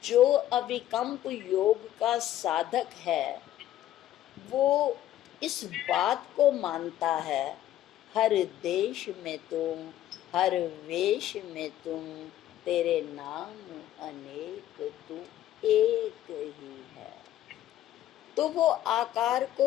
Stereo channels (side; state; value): right; quieter; 12.8 dB